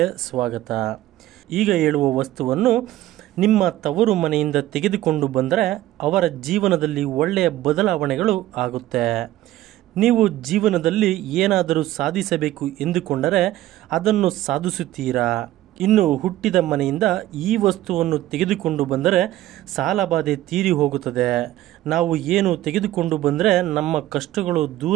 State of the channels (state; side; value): quieter; left; 14.8 dB